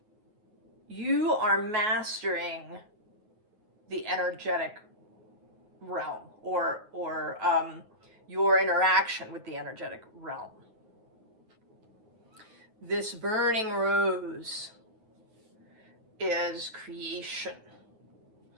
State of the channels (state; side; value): late; left; 9.2 ms